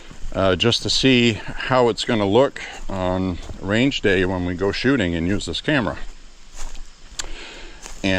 just to see how it's going to look on range day when we go shooting and use this camera.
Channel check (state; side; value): identical; both; correlation 1.00